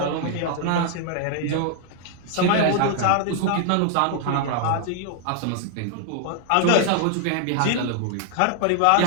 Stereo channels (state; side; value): different; both; correlation 0.00